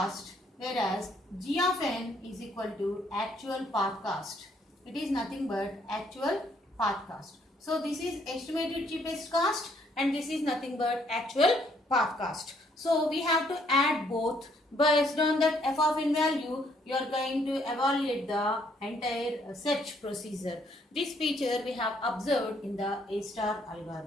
whereas g of n is equal to actual path cost. It is nothing but actual path cost. So this is estimated cheapest cost and this is nothing but actual path cost. So we have to add both. Based on that f of n value, you are going to evaluate the entire search procedure. This feature we have observed in the A star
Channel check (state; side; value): normal; both; correlation 0.68